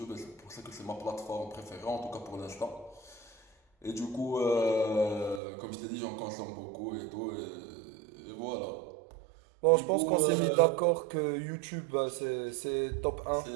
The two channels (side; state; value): left; drops out; at 5.4 s